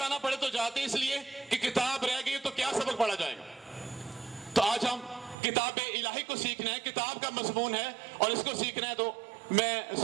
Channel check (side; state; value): left; drops out; at 5.4 s